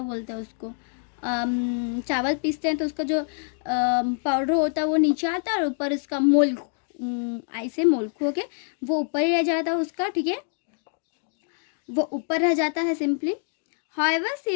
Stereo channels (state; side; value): silent; right; 61 dB below the other